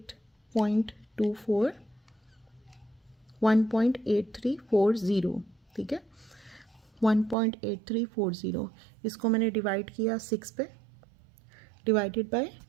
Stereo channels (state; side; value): drops out; left; at 7.4 s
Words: 1.8340, ठीक है, 1.8340। इसको मैंने डिवाइड किया 6 पे, डिवाइडेड बाय